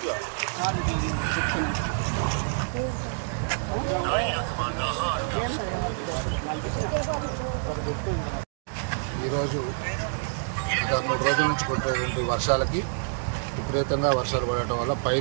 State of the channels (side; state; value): left; silent; digital silence